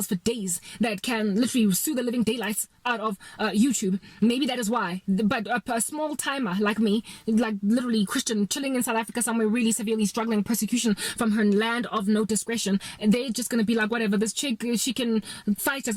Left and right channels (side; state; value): both; identical; correlation 1.00